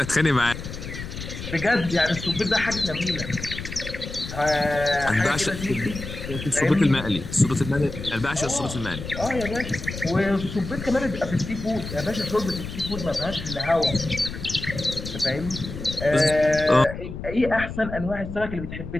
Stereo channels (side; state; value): left; noise; rumble, 9 dB below the sound